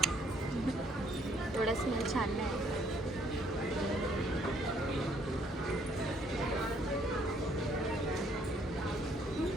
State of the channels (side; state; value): both; normal; correlation 0.65